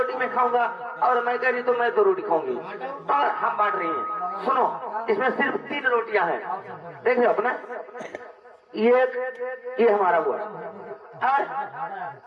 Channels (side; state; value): both; identical; correlation 1.00